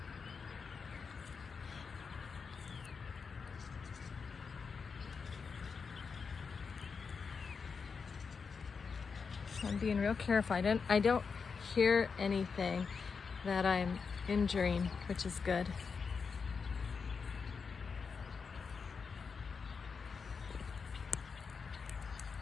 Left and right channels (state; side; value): quieter; right; 5.4 dB